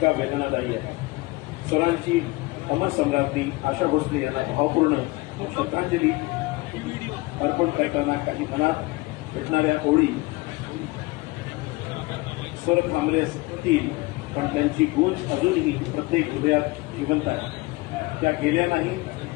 वेदनादायी आहे. स्वरांची अमर सम्राज्ञी आशा भोसले यांना भावपूर्ण श्रद्धांजली अर्पण करताना काही मनात उठणाऱ्या ओळी स्वर थांबले असतील, पण त्यांची गूंज अजूनही प्रत्येक हृदयात जिवंत आहे. त्या गेल्या नाही,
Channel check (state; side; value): quieter; right; 22.5 dB